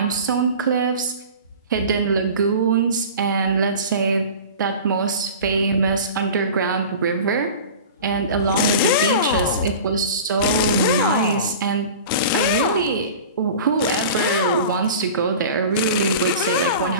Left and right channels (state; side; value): inverted; both; correlation -0.37